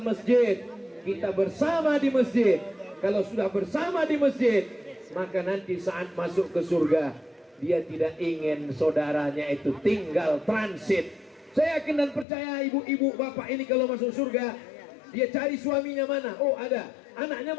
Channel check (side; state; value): right; drops out; at 12.2 s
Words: masjid. Kita bersama di masjid. Kalau sudah bersama di masjid, maka nanti saat masuk ke surga, dia tidak ingin saudaranya itu tinggal transit. Saya yakin dan percaya ibu-ibu bapak ini kalau masuk surga, dia cari suaminya mana? Oh ada. Anaknya